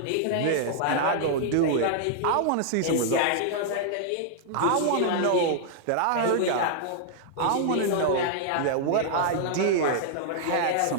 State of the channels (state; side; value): different; both; correlation -0.01